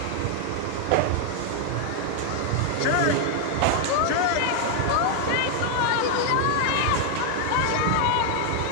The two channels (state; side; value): different; both; correlation 0.00